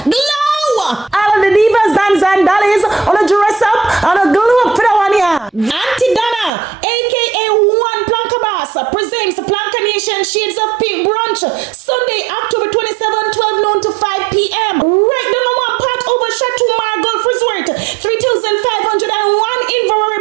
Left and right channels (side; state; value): left; drops out; at 6.5 s